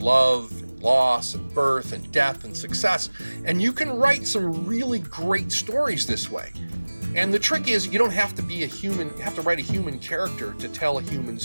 and loss and birth and death and success. And you can write some really great stories this way. And the trick is, you don't have to be a human, you have to write a human character to tell a human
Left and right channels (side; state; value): both; inverted; correlation -1.00